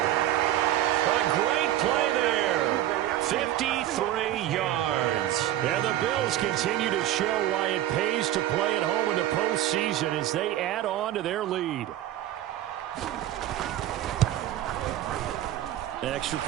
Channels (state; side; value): quieter; left; 13.0 dB